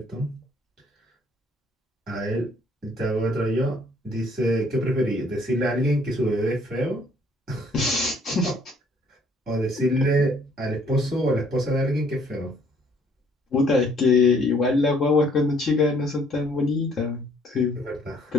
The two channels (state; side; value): normal; both; correlation 0.62